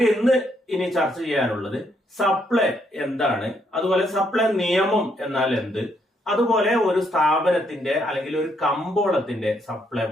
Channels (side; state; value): both; normal; correlation 0.73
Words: ഇനി ചർച്ച ചെയ്യാനുള്ളത് സപ്ലൈ എന്താണ്, അതുപോലെ സപ്ലൈ നിയമം എന്നാൽ എന്ത്, അതുപോലെ ഒരു സ്ഥാപനത്തിന്റെ അല്ലെങ്കിൽ ഒരു കമ്പോളത്തിന്റെ സപ്ലൈ